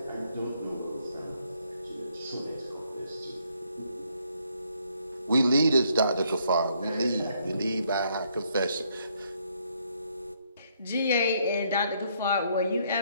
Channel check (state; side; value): inverted; both; correlation -0.71